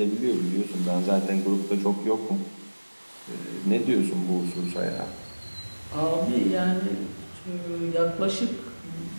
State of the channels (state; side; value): inverted; both; correlation -1.00